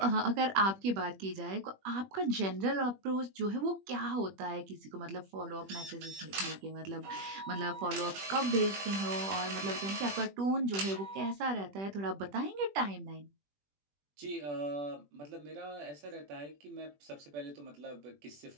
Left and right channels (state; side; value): late; left; 21 ms